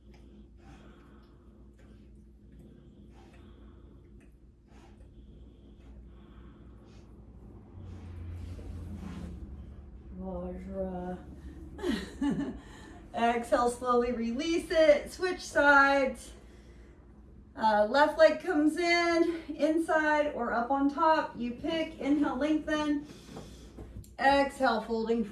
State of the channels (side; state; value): both; identical; correlation 1.00